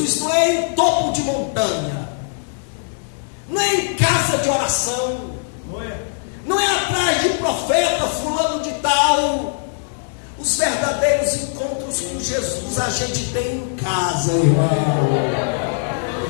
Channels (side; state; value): right; silent; digital silence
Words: não é em topo de montanha, não é em casa de oração, não é atrás de profeta fulano de tal. Os verdadeiros encontros com Jesus a gente tem em casa, irmão.